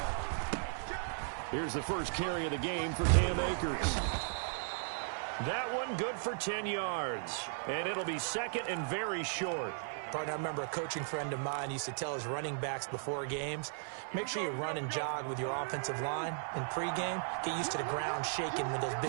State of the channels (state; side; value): silent; left; digital silence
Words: Here's the first carry of the game for Cam Akers. That one good for 10 yards. And it'll be second and very short. Partner, I remember a coaching friend of mine used to tell his running backs before games, make sure you run and jog with your offensive line in pregame. Get used to the ground shaking when those